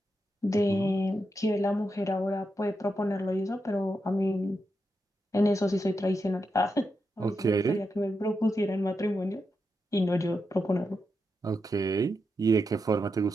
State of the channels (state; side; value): normal; both; correlation 0.86